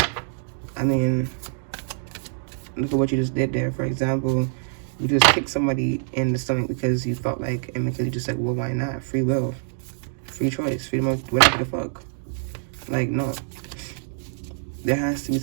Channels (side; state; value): left; silent; digital silence